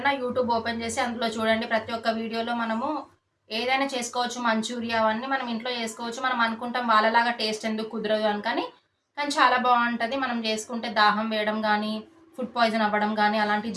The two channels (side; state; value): both; identical; correlation 1.00